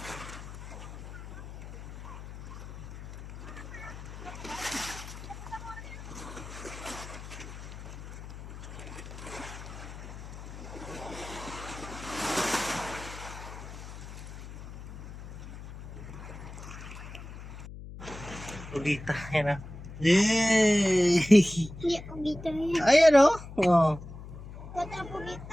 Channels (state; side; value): noise; left; hum, 12 dB below the sound